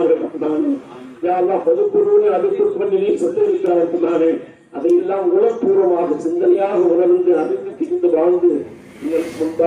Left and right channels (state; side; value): identical; both; correlation 1.00